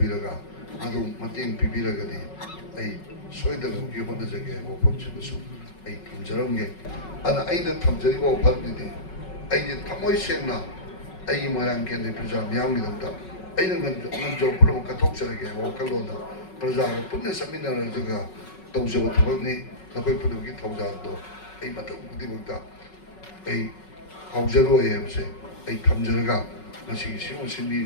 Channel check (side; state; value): right; late; 5.4 ms